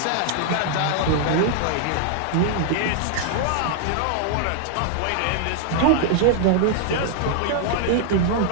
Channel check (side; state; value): both; different; correlation 0.00